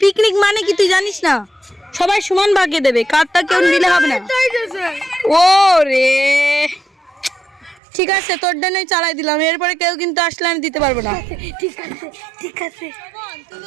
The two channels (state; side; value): drops out; left; at 7.8 s